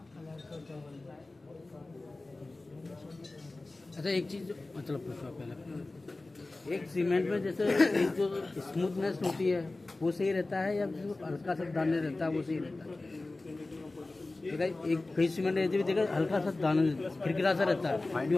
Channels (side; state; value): right; quieter; 3.1 dB